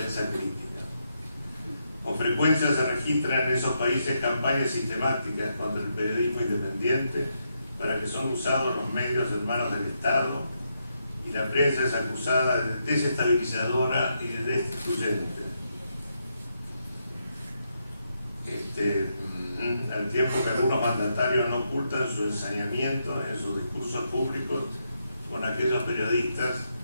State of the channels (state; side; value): inverted; both; correlation -0.81